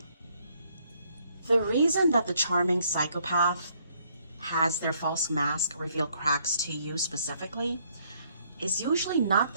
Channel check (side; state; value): both; inverted; correlation -0.68